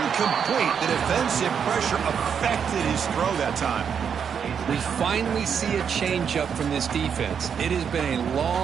The defensive pressure affected his throw that time. We finally see a changeup from this defense. It has been a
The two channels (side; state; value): left; quieter; 7.3 dB